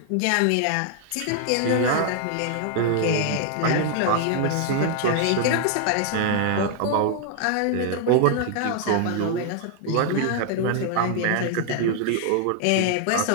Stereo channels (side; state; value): both; different; correlation 0.00